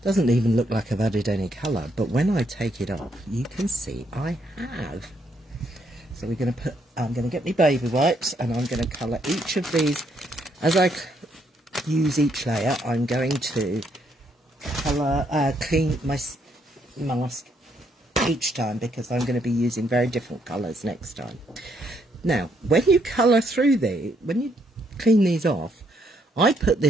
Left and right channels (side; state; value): both; normal; correlation 0.73